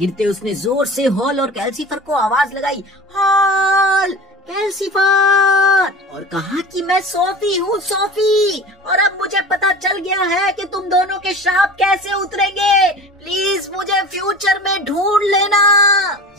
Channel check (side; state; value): both; normal; correlation 0.36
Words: उसने जोर से हॉल और कैल्सीफर को आवाज लगाई, हॉल, कैल्सीफर, और कहा कि मैं सोफी हूँ सोफी, और अब मुझे पता चल गया है कि तुम दोनों के श्राप कैसे उतरेंगे। प्लीज मुझे फ्यूचर में ढूंढ लेना।